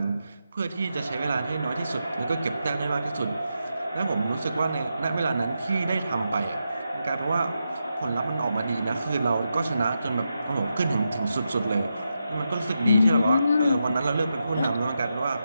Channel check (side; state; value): both; inverted; correlation -0.87